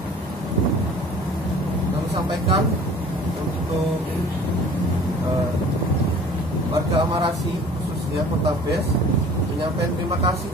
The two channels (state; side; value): normal; both; correlation 0.47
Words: Kami sampaikan untuk warga Amarasi, khususnya Kota Bes, menyampaikan terima kasih